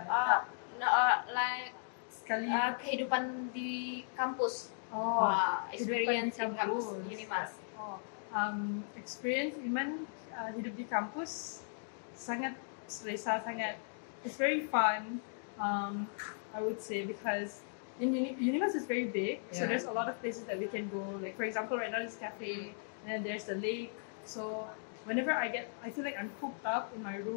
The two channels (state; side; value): silent; right; digital silence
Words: No, like Sekali. kehidupan di kampus. Oh, Experience in kehidupan di kampus kampus. Unimas. Oh, experience Iman hidup di kampus sangat selesa, sangat. It's very fun. I would say because in Unimas is very big, so Yeah. there's a lot of places that we can go. Like for example, right now there's cafe, and then there's the lake. So whenever I feel like I'm cooped up in my